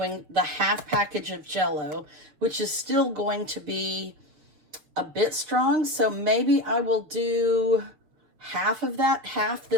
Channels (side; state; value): left; late; 6.5 ms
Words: the half package of Jell-o, which is still going to be a bit strong. So maybe I will do half of that, half